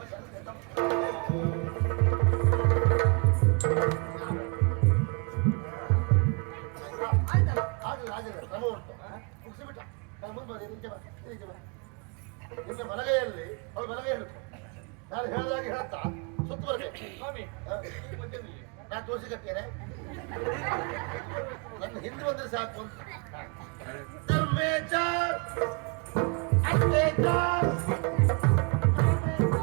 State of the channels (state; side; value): quieter; left; 33.4 dB